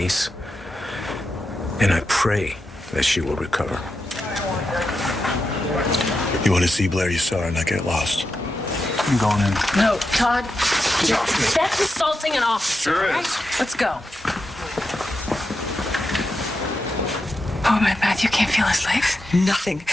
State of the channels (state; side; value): normal; both; correlation 0.87